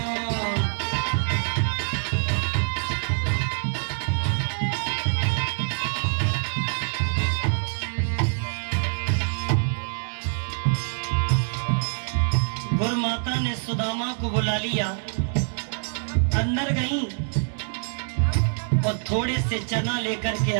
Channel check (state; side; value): silent; left; 62 dB below the other